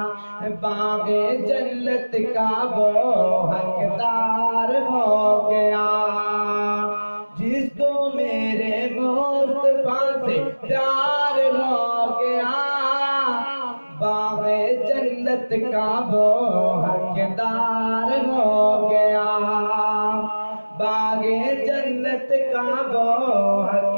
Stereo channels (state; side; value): inverted; both; correlation -1.00